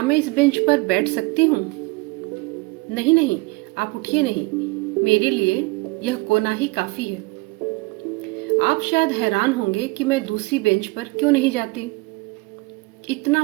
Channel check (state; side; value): quieter; left; 25.3 dB